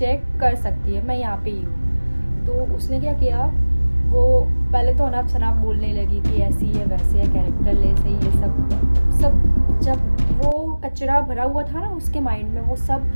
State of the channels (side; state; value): both; inverted; correlation -1.00